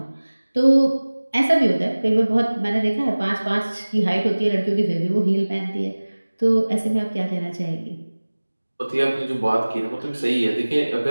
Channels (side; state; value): both; inverted; correlation -1.00